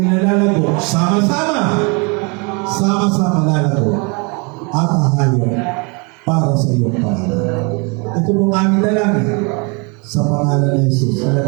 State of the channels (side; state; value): left; quieter; 31.6 dB